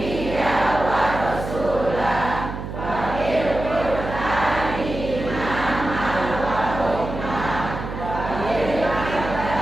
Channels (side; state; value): right; noise; hum, 7 dB below the sound